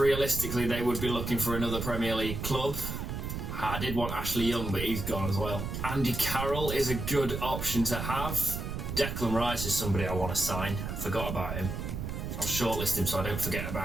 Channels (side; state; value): right; noise; rumble, 5 dB below the sound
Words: they would be looking for another Premier League club. I did want Ashley Young, but he's gone as well. Andy Carroll is a good option to have. Declan Rice is somebody I want to sign. Forgot about him. I'll shortlist him so I don't forget